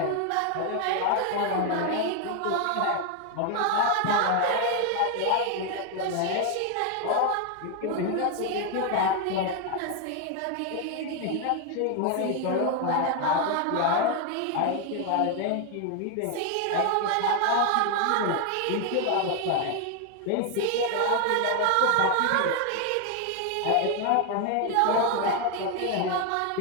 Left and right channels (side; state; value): both; different; correlation 0.01